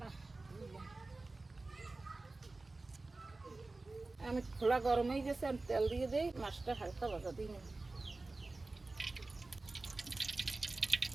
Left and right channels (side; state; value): left; quieter; 3.3 dB